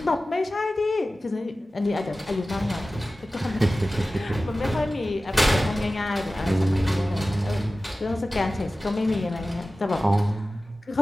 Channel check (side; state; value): both; normal; correlation 0.96